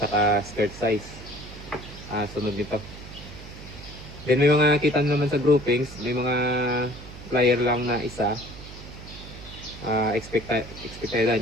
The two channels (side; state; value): right; noise; hum, 14 dB below the sound